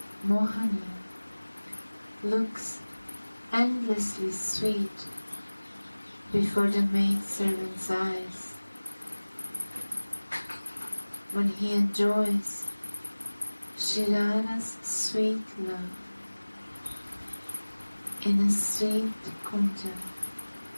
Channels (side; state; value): both; inverted; correlation -1.00